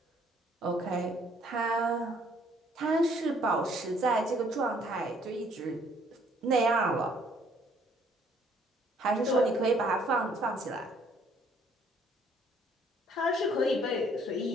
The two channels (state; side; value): normal; both; correlation 0.62